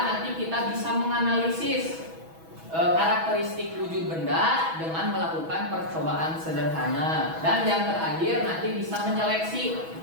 nanti kita bisa menganalisis karakteristik wujud benda dengan melakukan percobaan sederhana. Dan yang terakhir, nanti bisa menyeleksi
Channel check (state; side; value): late; left; 6.1 ms